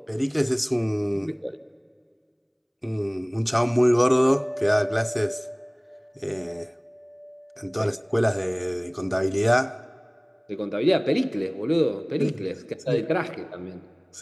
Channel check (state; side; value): identical; both; correlation 1.00